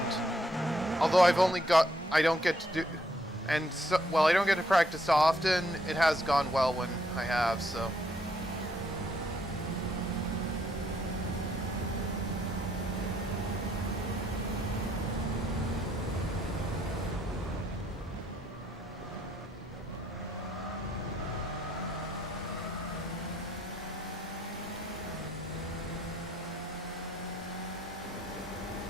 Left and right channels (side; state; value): both; normal; correlation 0.71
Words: Although I've only got... I don't get to do... And, so, well, I don't get to practice often, it has gone well when I have, so...